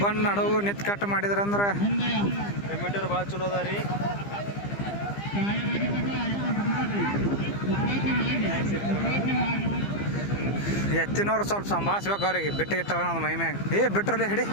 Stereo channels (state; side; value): late; right; 15 ms